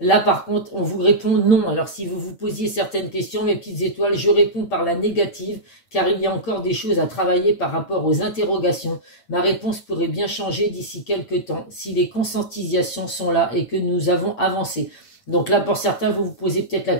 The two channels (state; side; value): late; right; 9.1 ms